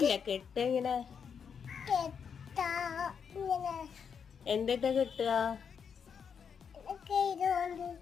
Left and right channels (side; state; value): right; quieter; 6.8 dB